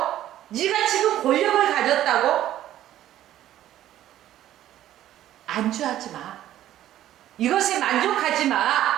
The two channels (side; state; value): left; quieter; 12.7 dB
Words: 네가 지금 권력을 가졌다고 안주하지 마. 이것에 만족하지